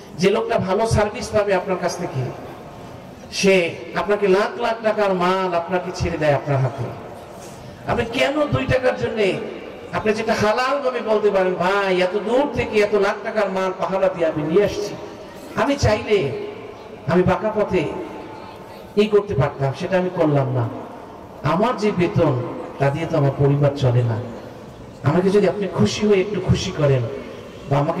যে লোকটা ভালো সার্ভিস পাবে আপনার কাছ থেকে, সে আপনাকে লাখ লাখ টাকার মাল আপনাকে ছেড়ে দেয় আপনার হাতে। আপনি কেন 2 টাকার জন্য, আপনি যেটা হালাল ভাবে বলতে পারেন, ভাই এত দূর থেকে এত লাখ টাকার মাল পাহারা দিয়ে আমি নিয়ে আসছি, আমি চাইলে আমি বাঁকা পথে এই করতে পারতাম, সেটা আমি করলাম না। আমার যে বেতন, তা দিয়ে তো আমার পরিবার চলে না। আমাকে যদি আপনি খুশি হয়ে একটু খুশি করেন, বা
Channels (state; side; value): identical; both; correlation 1.00